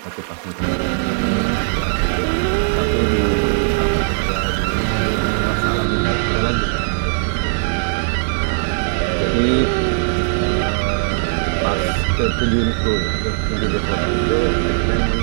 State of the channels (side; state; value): left; silent; digital silence